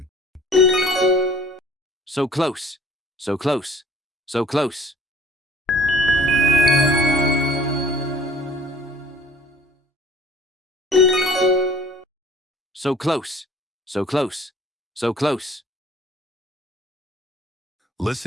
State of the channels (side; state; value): both; normal; correlation 0.52